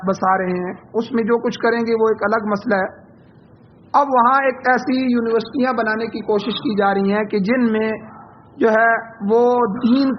بسا رہے ہیں، اس میں جو کچھ کریں گے وہ ایک الگ مسئلہ ہے۔ اب وہاں ایک ایسی یونیورسٹیاں بنانے کی کوشش کی جا رہی ہیں کہ جن میں جو ہے وہ دین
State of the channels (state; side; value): identical; both; correlation 1.00